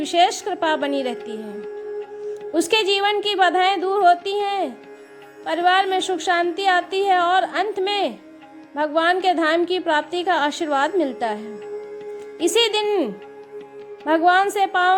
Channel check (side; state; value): both; identical; correlation 1.00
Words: कृपा बनी रहती है। उसके जीवन की बाधाएं दूर होती हैं, परिवार में सुख शांति आती है और अंत में भगवान के धाम की प्राप्ति का आशीर्वाद मिलता है।